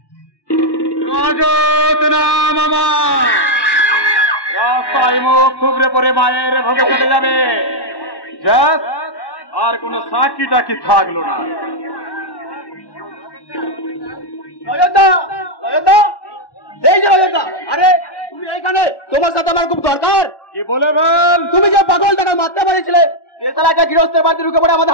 রাজত নাম আমার, রাস্তায় মুখ থুবড়ে পড়ে মায়ের ভোগে চলে যাবে, আর কোন সাক্ষী টাকি থাকলো না। এই যে অযোধ্যা, আরে তুমি এইখানে, তোমার সাথে আমার খুব দরকার। কি বলে বল? তুমি যে পাগল টাকা মারতে পারিছিলে, গৃহস্থের বাড়িতে ঢুকে পড়ে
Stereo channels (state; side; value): late; right; 1.1 ms